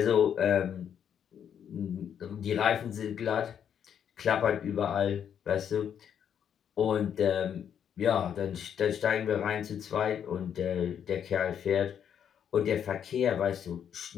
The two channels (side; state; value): right; quieter; 8.6 dB